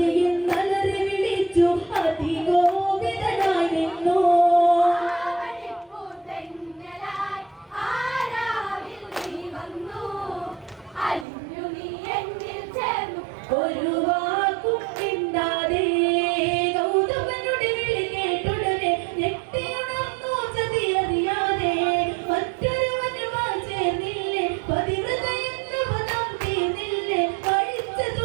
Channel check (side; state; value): left; drops out; at 11.2 s